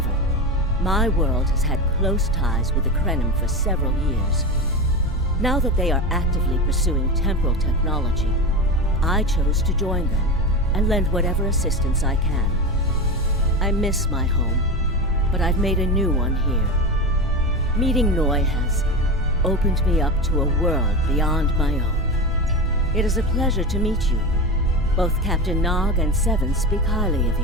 my world has had close ties with the Krenim for several years. Now that they are actively pursuing temporal technology, I chose to join them and lend whatever assistance I can. I miss my home, but I've made a new one here. Meeting Ngai has opened me up to a world beyond my own. It is a pleasure to meet you. Both Captain Nog and Seven speak highly of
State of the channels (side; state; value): both; normal; correlation 0.22